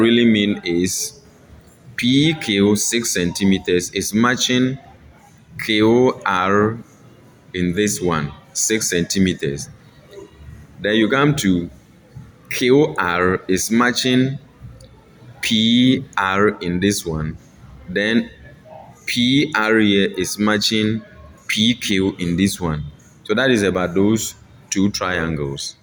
mean is PQ 6 centimeters is matching QR in this one, 6 centimeters. Then you come to QR is matching PR in this one. Then PR here is matching PQ in this one. So that is about those two triangles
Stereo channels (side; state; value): both; identical; correlation 1.00